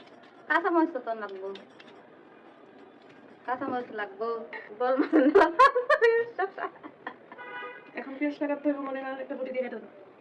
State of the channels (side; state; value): both; identical; correlation 1.00